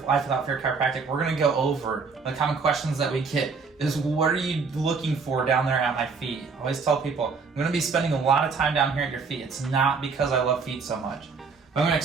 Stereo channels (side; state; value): left; quieter; 4.9 dB